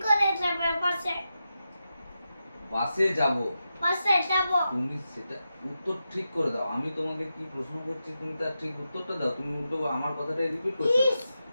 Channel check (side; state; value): both; inverted; correlation -0.89